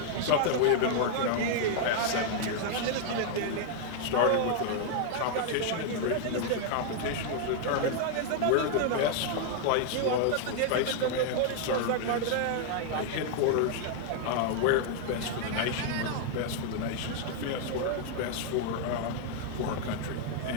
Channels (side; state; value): both; different; correlation 0.00